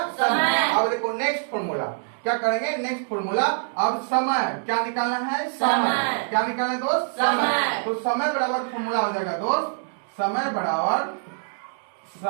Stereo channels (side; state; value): left; silent; digital silence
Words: समय। अब देखो नेक्स्ट फॉर्मूला क्या करेंगे, नेक्स्ट फॉर्मूला। अब समय क्या निकालना है, समय क्या निकालना है दोस्त, समय। तो समय बराबर फॉर्मूला हो जाएगा दोस्त, समय